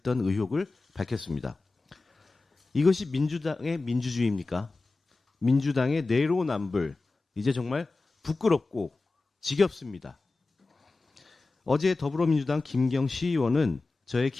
의혹을 밝혔습니다. 이것이 민주당의 민주주의입니까? 민주당의 내로남불, 이제 정말 부끄럽고 지겹습니다. 어제 더불어민주당 김경시 의원은 저의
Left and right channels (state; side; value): quieter; right; 3.5 dB